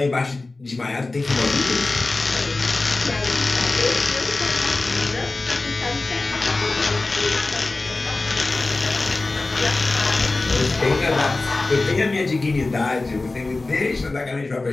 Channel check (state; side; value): quieter; right; 3.3 dB